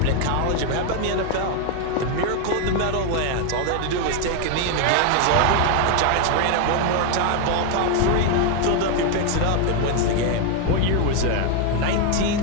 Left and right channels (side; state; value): both; different; correlation 0.01